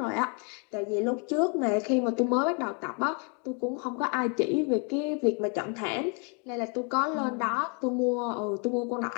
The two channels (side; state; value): right; quieter; 36.7 dB